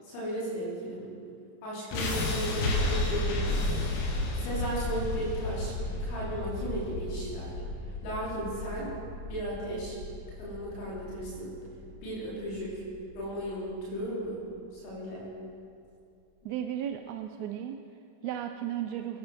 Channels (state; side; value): late; right; 31 ms